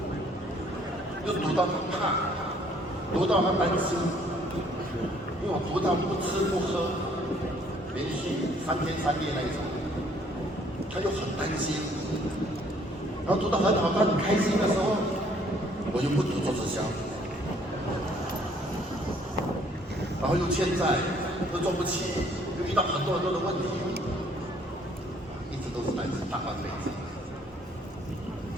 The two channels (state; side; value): normal; both; correlation 0.62